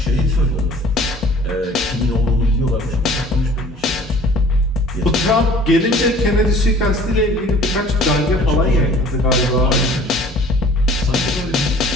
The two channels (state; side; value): normal; both; correlation 0.50